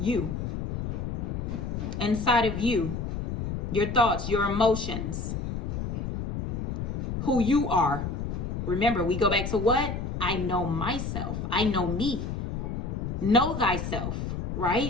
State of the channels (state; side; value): noise; left; rumble, 3 dB below the sound